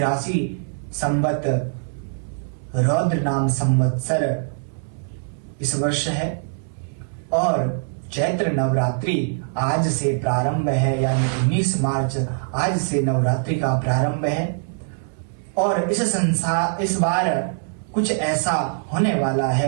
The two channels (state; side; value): silent; left; 60 dB below the other